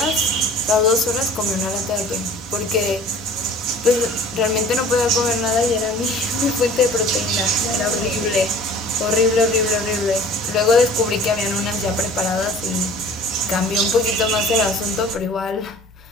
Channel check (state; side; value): normal; both; correlation 0.47